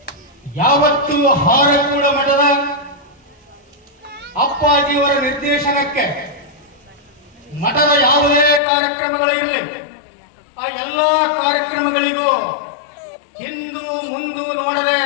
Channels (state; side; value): drops out; right; at 8.6 s